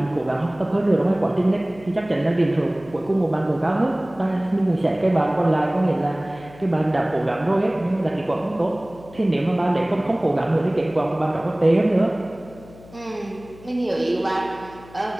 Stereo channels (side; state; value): left; noise; hum, 21 dB below the sound